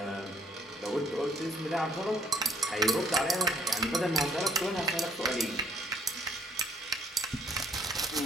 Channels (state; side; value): normal; both; correlation 0.59